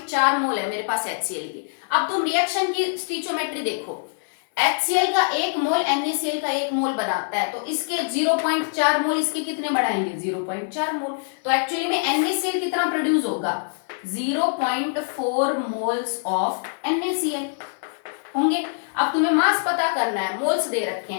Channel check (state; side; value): silent; right; 62 dB below the other